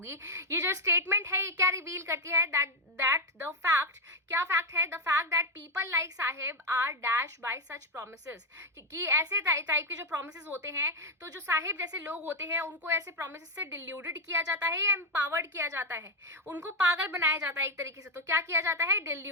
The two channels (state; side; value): normal; both; correlation 0.05